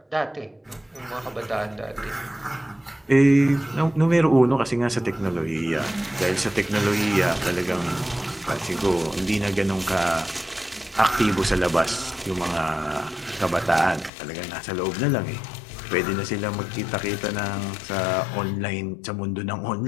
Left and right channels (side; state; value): right; drops out; at 14.1 s